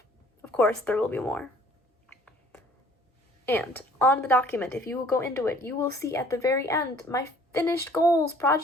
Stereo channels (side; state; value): both; normal; correlation 0.55